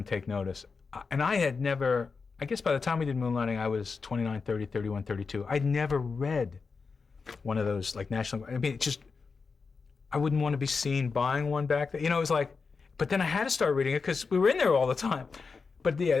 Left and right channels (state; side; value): quieter; right; 4.8 dB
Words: take notice. And I had never, I guess by the time we did Moonlighting, I was 29, 30, 31, 32. I'd never read one of those, like, national, I mean, I wouldn't want to be seen buying one back then. It was like, but then I had to start reading it because we were in there all the time. But yeah,